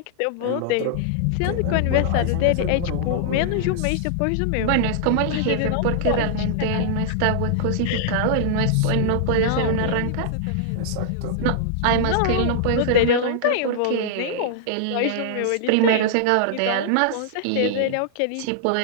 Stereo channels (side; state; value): both; different; correlation -0.01